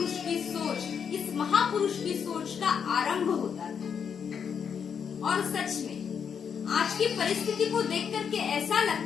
की सोच, इस महापुरुष की सोच का आरंभ होता था। और सच में आज की परिस्थिति को देख करके ऐसा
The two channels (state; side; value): quieter; right; 7.1 dB